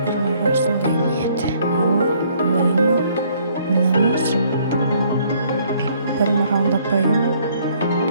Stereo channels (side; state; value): both; inverted; correlation -0.63